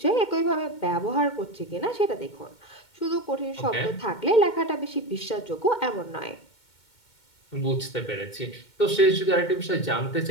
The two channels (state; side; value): late; right; 2.2 ms